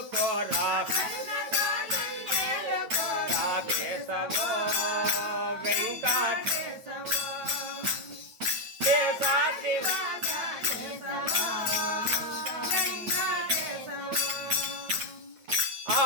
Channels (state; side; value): late; left; 9.1 ms